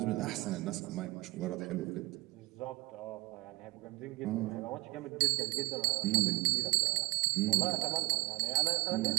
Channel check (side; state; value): left; quieter; 21.9 dB